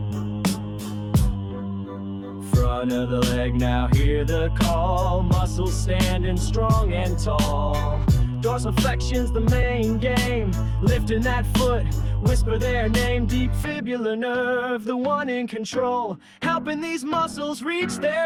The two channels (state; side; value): identical; both; correlation 1.00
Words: Front of the leg, now hear the call. Muscles standing strong and tall. Dorsiflexion's the main game. Lifting that foot, whisper their name. Deep fibular nerve, the one in control, helping these muscles reach